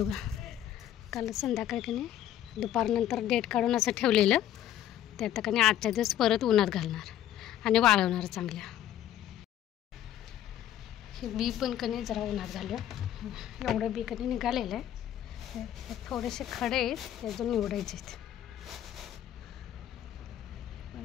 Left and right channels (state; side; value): quieter; right; 11.7 dB